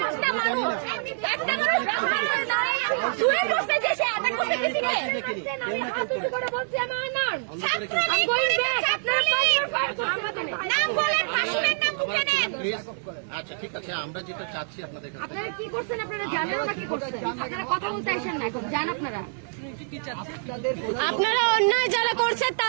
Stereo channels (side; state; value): left; silent; 58 dB below the other